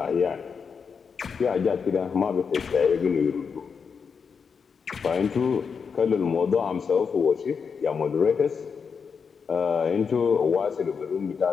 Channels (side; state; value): right; quieter; 5.9 dB